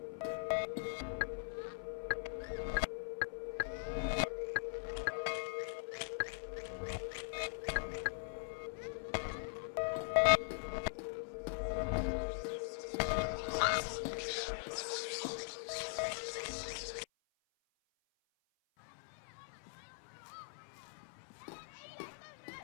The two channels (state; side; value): silent; right; 50 dB below the other